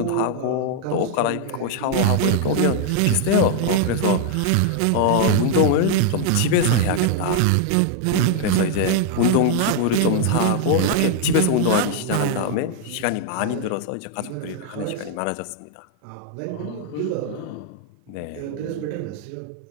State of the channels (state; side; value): different; both; correlation 0.00